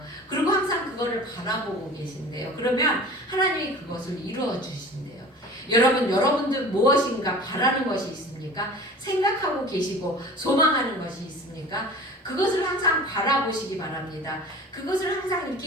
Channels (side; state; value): both; normal; correlation 0.40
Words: 그리고 항상 그거를 바라보고 계신대요. 그러면 하나님이 그것을 이루어 주신대요. 여러분들 무엇인가 바라는 것이 있습니까? 생각하고 계시고 소망하는 것이 있습니까? 그것을 항상 바라보시기 바랍니다. 그것을 항상